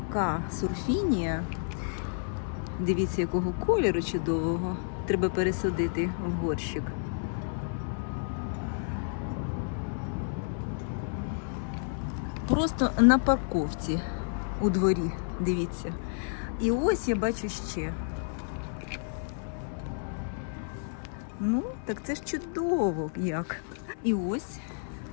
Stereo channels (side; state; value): right; silent; 56 dB below the other